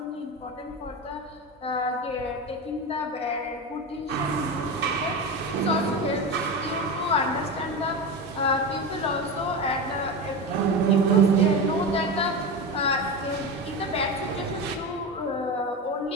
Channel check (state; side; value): normal; both; correlation 0.21